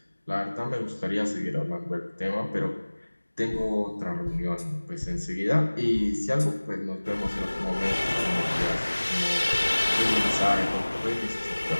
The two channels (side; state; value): both; inverted; correlation -1.00